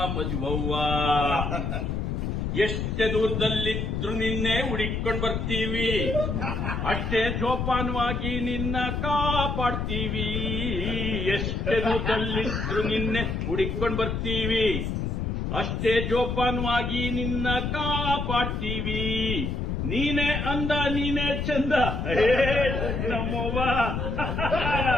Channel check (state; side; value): noise; left; rumble, 2 dB below the sound